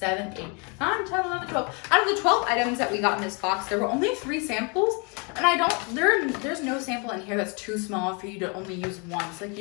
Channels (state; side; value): quieter; right; 33.4 dB